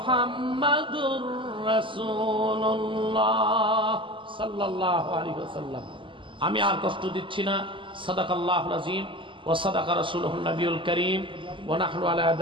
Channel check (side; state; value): left; late; 0.25 ms